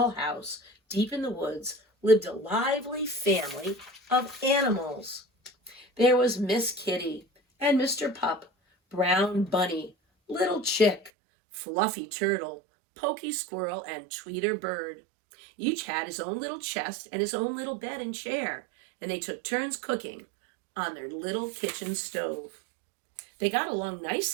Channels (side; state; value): left; drops out; at 11.1 s